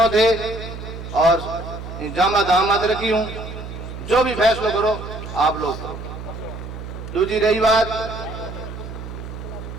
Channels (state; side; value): noise; right; hum, 10 dB below the sound